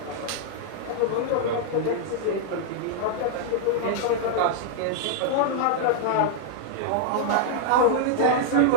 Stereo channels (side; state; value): both; different; correlation 0.00